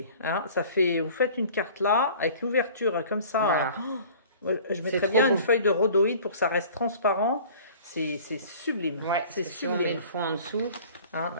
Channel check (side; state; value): both; inverted; correlation -0.46